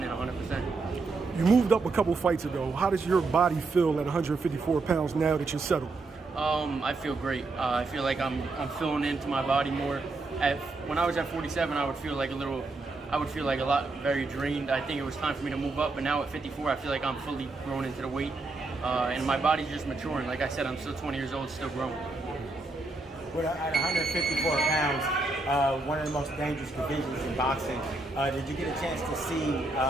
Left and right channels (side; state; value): left; quieter; 3.4 dB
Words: 100%. You moved up a couple fights ago. How does your body feel at 154 pounds now that you're settled? I feel great. I feel like I'm filling into my body more. When I was at 47, I would feel like a lot very drained. I think it was time for me to move up, but now at 54, I feel like I'm fully grown into the weight. And my body's just maturing. Like I said, I'm still 20 years old, still growing. Well, at 154 pounds, one of the most dangerous divisions in boxing, did you get a chance to see